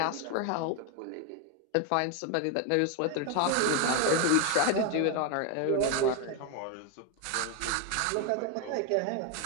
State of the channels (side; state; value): both; different; correlation 0.01